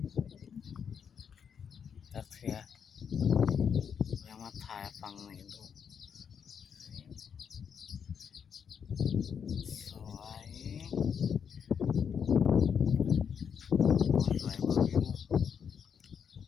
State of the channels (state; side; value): quieter; right; 7.3 dB